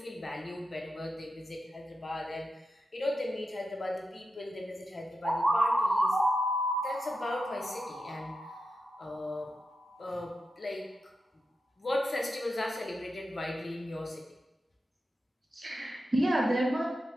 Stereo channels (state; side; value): normal; both; correlation 0.89